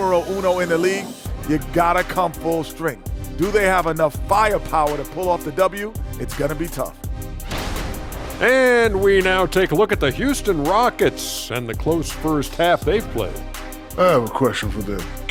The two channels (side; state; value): both; identical; correlation 1.00